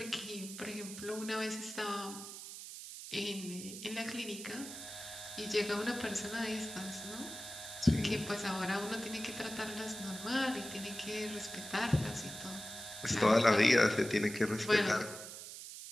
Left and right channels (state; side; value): noise; right; hiss, 10 dB below the sound